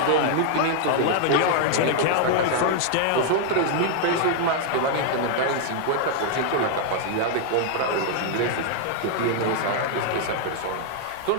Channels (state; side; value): different; both; correlation -0.01